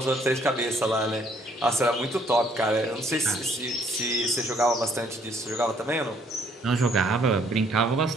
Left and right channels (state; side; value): normal; both; correlation 0.65